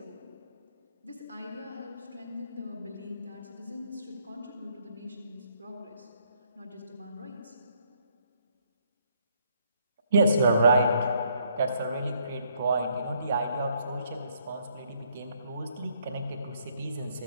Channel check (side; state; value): both; inverted; correlation -0.69